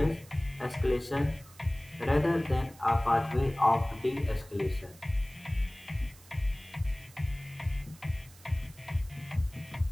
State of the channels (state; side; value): noise; right; hiss, 23 dB below the sound